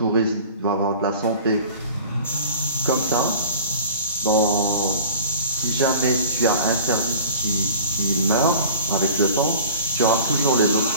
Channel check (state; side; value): inverted; both; correlation -0.43